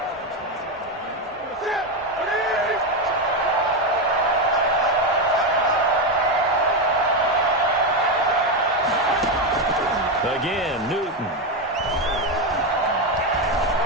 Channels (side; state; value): both; normal; correlation 0.10